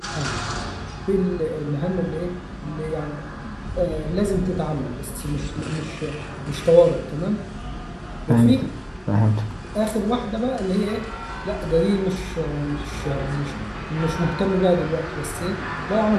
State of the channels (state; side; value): identical; both; correlation 1.00